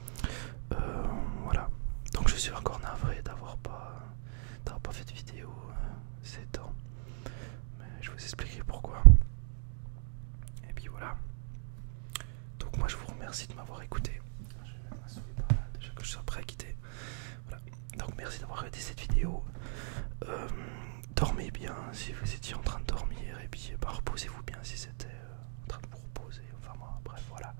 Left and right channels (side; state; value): left; silent; 54 dB below the other